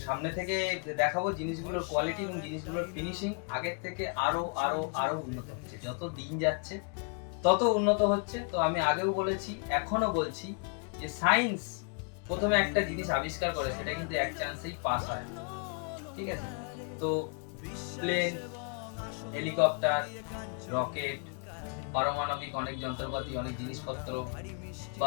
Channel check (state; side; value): quieter; right; 39.4 dB